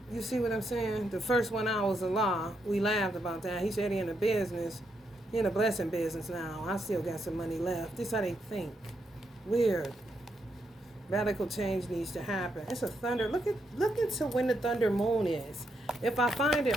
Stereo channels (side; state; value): both; normal; correlation 0.80